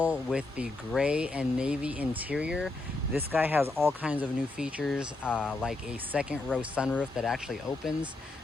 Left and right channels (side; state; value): right; quieter; 3.1 dB